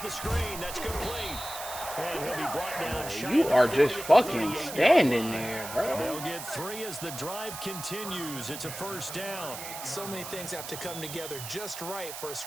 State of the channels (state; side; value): noise; right; hiss, 9 dB below the sound